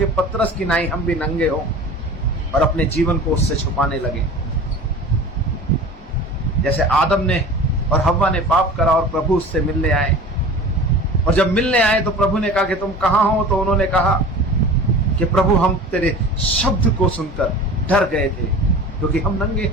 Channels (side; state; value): both; normal; correlation 0.38